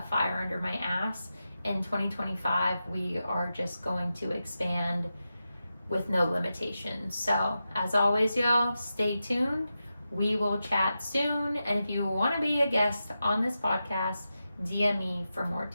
fire under my ass. In 2025, we are just going to expand with no limitations. So as always, y'all, stay tuned. We will chat soon. And if you want to be a guest on this podcast, DM me for more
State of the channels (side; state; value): both; inverted; correlation -0.91